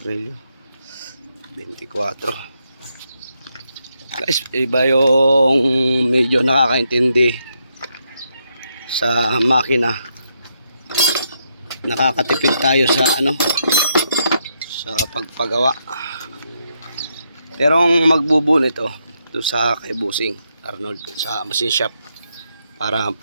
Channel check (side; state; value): both; inverted; correlation -0.79